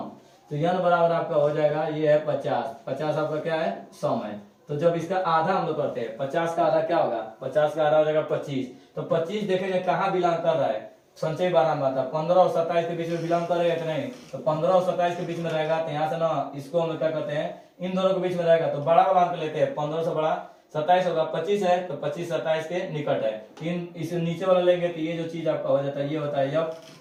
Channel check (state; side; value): identical; both; correlation 1.00